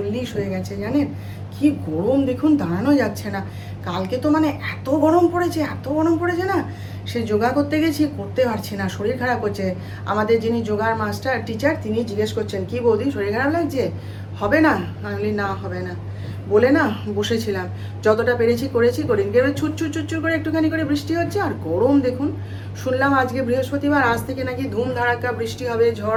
হয়ে গেছে। জানেন কি গরম দেখুন, দাঁড়ানো যাচ্ছে না। কালকে তো মানে এত গরম পড়েছে, এত গরম পড়েছে না, সে যোগা করতে গেছি, করতে পারছি না, শরীর খারাপ হচ্ছে। আমাদের যিনি যোগার মাস্টার টিচার, তিনি জিজ্ঞেস করছেন কি বৌদি শরীর খারাপ লাগছে, হবে না? আমি বলি না হবে না বলে না বসেছিলাম, যতটা পেরেছি করেছি, করিনি। এবার ছুটছুট করে একটুখানি করে বৃষ্টি হচ্ছে, আর গরম দেখুন। শুনলাম আজকে বৃহস্পতিবার, আজ থেকে নাকি ধুম ধাড়াক্কা বৃষ্টি হবে,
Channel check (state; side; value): identical; both; correlation 1.00